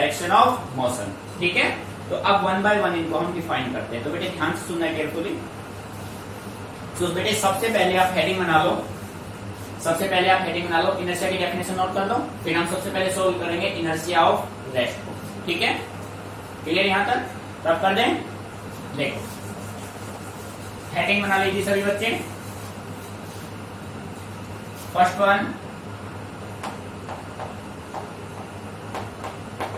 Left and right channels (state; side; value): identical; both; correlation 1.00